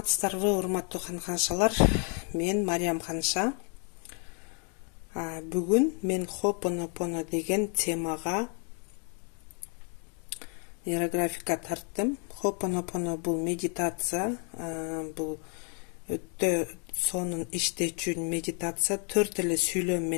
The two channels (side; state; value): right; quieter; 39.5 dB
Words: урматтуу каншалар. Мен Мариям Канша. Бүгүн мен Ho'oponopono деген темага нейрографика тарттым. Ho'oponopono бул медитация, бул өтө сонун иштечү медитация, 4 эле сүйлөм